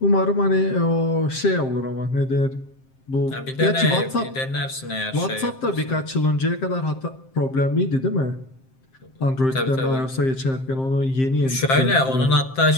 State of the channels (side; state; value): right; late; 7.6 ms